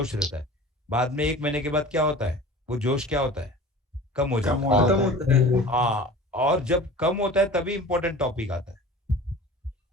रहता है, बाद में 1 महीने के बाद क्या होता है, वो जोश क्या होता है, कम हो जाता है। हाँ, और जब कम होता है तभी इंपॉर्टेंट टॉपिक आता है।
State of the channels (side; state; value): both; normal; correlation 0.40